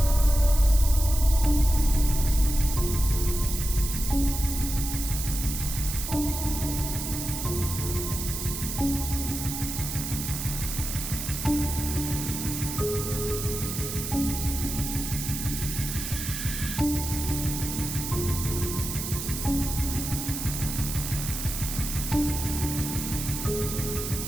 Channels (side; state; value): right; noise; hiss, 5 dB below the sound